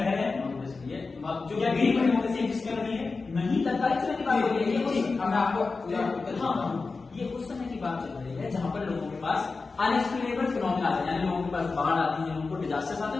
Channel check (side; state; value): right; quieter; 4.1 dB